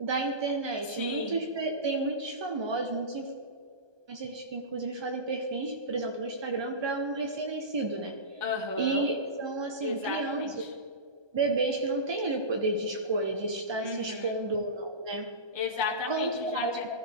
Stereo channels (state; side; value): late; left; 1.2 ms